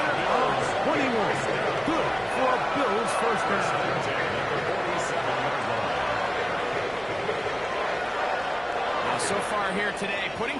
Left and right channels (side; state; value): right; noise; hum, 23 dB below the sound